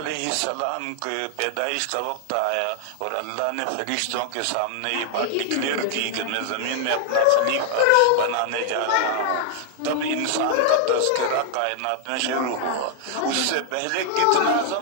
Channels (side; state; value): both; different; correlation 0.00